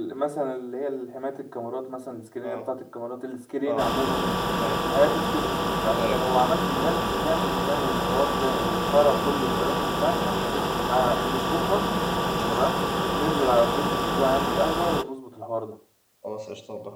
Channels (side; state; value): both; identical; correlation 1.00